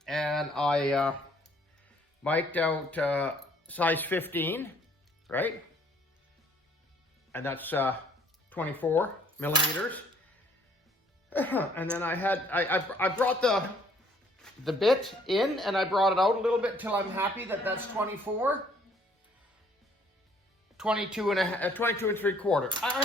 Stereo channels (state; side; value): normal; both; correlation 0.62